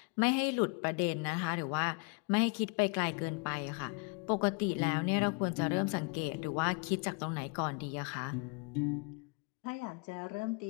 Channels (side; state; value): right; quieter; 33.0 dB